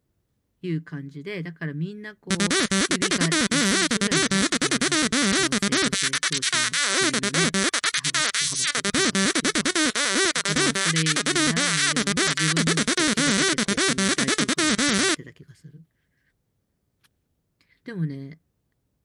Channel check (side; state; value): both; identical; correlation 1.00